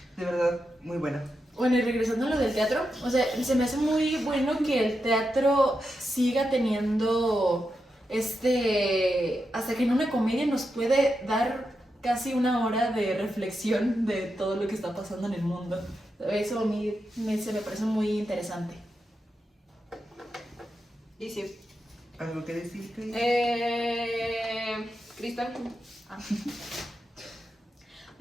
De verdad, muy buena. Bueno, y regresando a lo del teatro, o sea, se me hace muy bueno que el teatro siga teniendo hasta que en una comedia nos puede dar casi una hora de reflexión de todo lo que está pasando en el mundo. Eso a mí se me parece muy interesante. Y sí. ¿Algo que decir, Cris? Cristal.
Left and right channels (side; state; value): both; normal; correlation 0.87